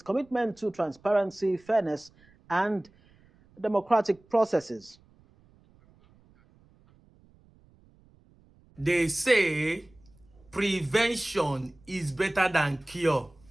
commitment to transparency, fairness, and democratic processes. They say prevention is better than cure.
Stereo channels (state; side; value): noise; right; rumble, 30 dB below the sound